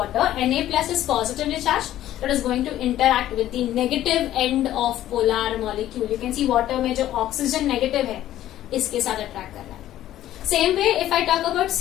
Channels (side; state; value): right; quieter; 13.2 dB